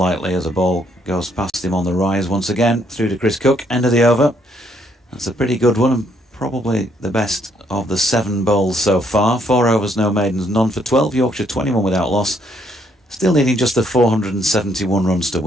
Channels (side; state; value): both; normal; correlation 0.70